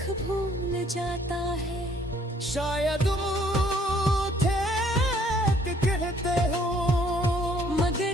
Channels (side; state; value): both; normal; correlation 0.62